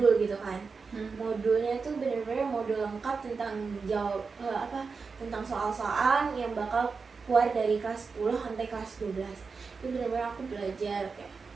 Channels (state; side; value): quieter; left; 4.9 dB